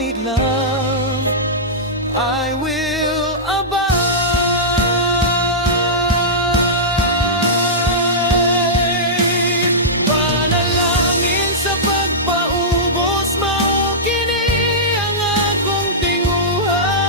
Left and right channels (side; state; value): both; normal; correlation -0.14